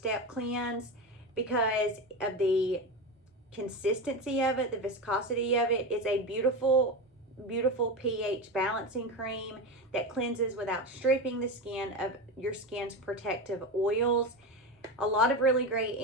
cleanse because of the consistency of it, the viscosity of it. It's a beautiful, beautiful pH balancing cream that cleanses without stripping the skin of your skin's protective oils. A lot of really great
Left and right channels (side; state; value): both; normal; correlation 0.20